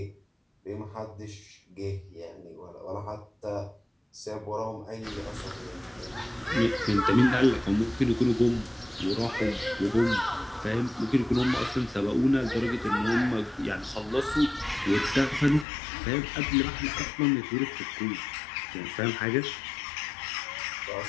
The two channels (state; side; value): drops out; right; at 15.7 s